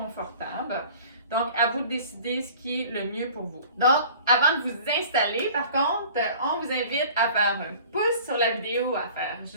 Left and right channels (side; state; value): both; inverted; correlation -0.46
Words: Donc, à vous de décider ce qui est le mieux pour vous. Donc, avant de vous installer, par contre, on vous invite à faire un pouce sur la vidéo, à faire